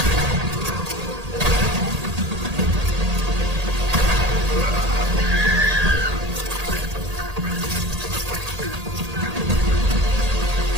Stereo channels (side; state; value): left; late; 1.8 ms